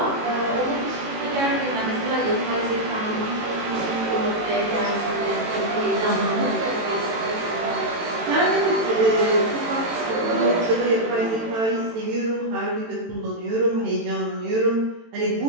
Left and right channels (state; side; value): late; left; 18 ms